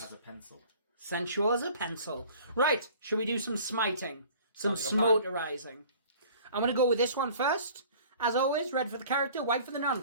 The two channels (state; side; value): inverted; both; correlation -0.48